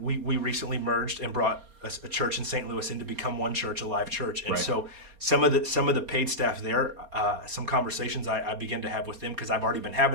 we recently merged and brought a church in St. Louis in to become one church, a live church, and so some of the paid staff there, some conversations I began to have with them, because I've already been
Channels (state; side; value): late; left; 4.3 ms